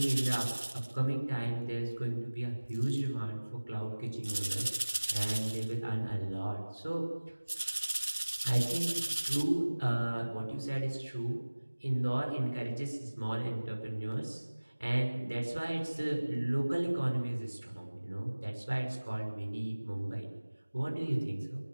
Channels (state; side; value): inverted; both; correlation -1.00